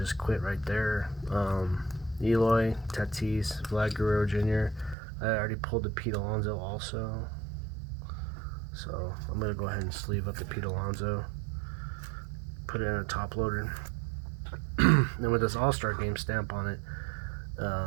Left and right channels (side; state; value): left; drops out; at 5.0 s